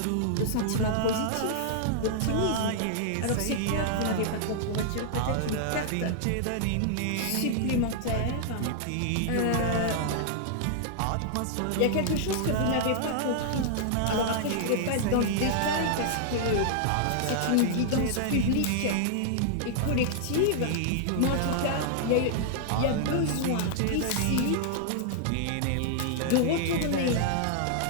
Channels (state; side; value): different; both; correlation -0.01